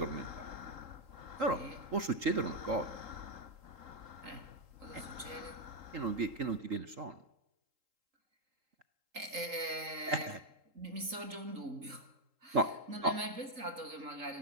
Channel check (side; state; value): left; late; 3.8 ms